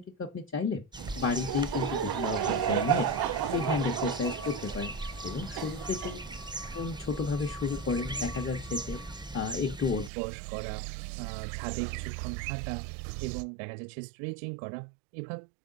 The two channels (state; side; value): drops out; left; at 10.1 s